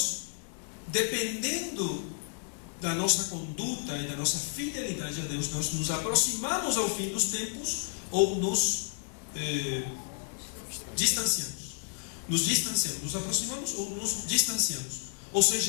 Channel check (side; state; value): right; silent; digital silence